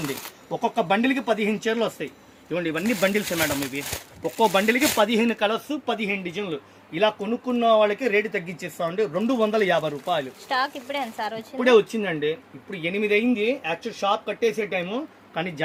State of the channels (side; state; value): both; identical; correlation 1.00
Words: అండి. ఒక్కొక్క బండిల్కి 15 చీరలు వస్తాయి. ఇవ్వండి, ఇవన్నీ బండిల్స్ మేడం. ఇవి ఒక్కో బండిల్కి 15 కలర్స్, 15 డిజైన్లు. ఇలా కొనుక్కున్న వాళ్ళకి రేటు తగ్గించేస్తామండి. 250 రూపాయలు. స్టాక్ ఇప్పుడే వచ్చిందండి. ఇప్పుడు 8 అయింది. యాక్చువల్ షాప్ కట్టేసే టైము, కానీ